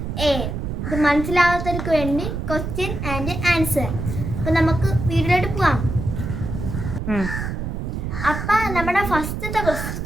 ഇത് മനസ്സിലാവാത്തവർക്ക് വേണ്ടി ക്വസ്റ്റ്യൻ ആൻഡ് ആൻസർ. അപ്പോൾ നമുക്ക് വീഡിയോയിലോട്ട് പോവാം. അപ്പം നമ്മുടെ ഫസ്റ്റത്തെ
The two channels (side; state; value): right; noise; rumble, 4 dB below the sound